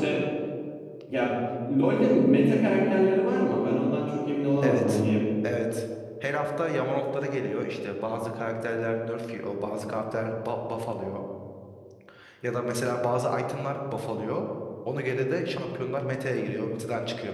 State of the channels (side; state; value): both; identical; correlation 1.00